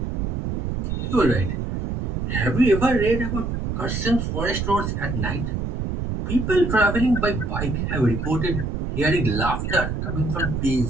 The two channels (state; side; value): noise; right; rumble, 2 dB below the sound